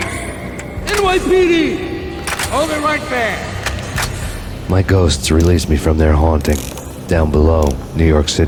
NYPD! Hold it right there! My ghosts released me from their haunting. Down below, New York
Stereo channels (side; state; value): both; identical; correlation 1.00